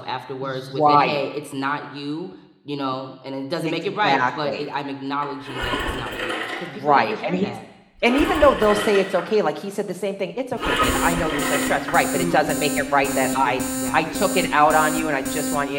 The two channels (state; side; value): identical; both; correlation 1.00